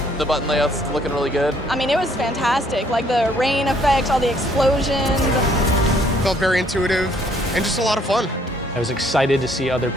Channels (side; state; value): both; normal; correlation 0.64